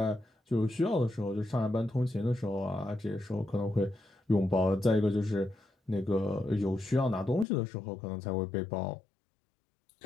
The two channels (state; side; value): drops out; right; at 7.5 s